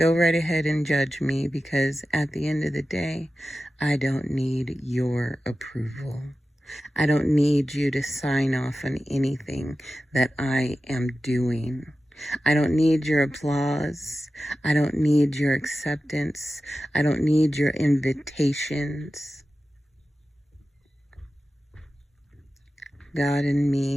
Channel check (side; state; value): both; normal; correlation 0.94